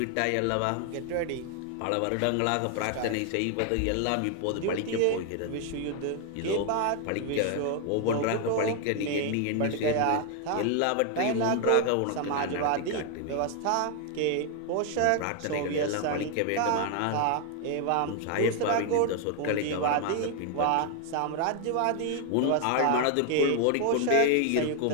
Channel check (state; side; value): different; both; correlation 0.00